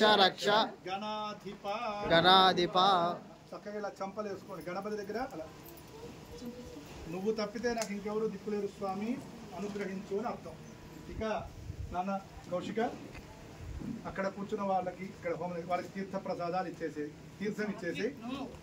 రక్ష గణాధిప. గణాధిప. చక్కగా ఇలా చంపలు వేసుకోండి గణపతి దగ్గర. అలా నువ్వు తప్పితే నాకు ఇంకెవరు దిక్కులేరు స్వామి అనుగ్రహించు అని అర్థం. ఇక నాన్న కౌశిక అక్కడ కూర్చున్న వాళ్ళకి ఇక్కడ వాళ్ళకి తీర్థ ప్రసాదాలు ఇచ్చేసి తీర్థం ఇచ్చేసి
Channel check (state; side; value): identical; both; correlation 1.00